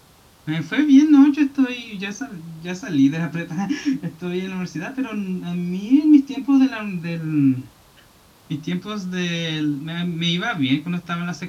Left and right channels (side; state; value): both; identical; correlation 1.00